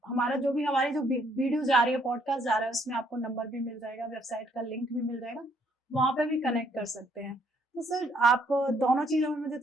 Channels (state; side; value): normal; both; correlation 0.68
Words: हमारा जो भी हमारी जो वीडियो जा रही है, पॉडकास्ट जा रहा है, उसमें आपको नंबर भी मिल जाएगा, वेबसाइट का लिंक भी मिल जाएगा, वहां पे भी कनेक्ट कर सकते हैं। तो सर आप दोनों चीजों में मुझे